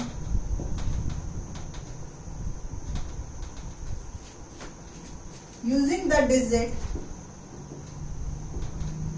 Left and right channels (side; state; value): both; identical; correlation 1.00